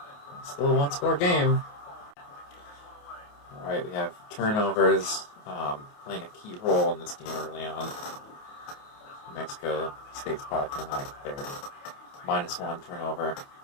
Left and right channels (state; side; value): late; right; 28 ms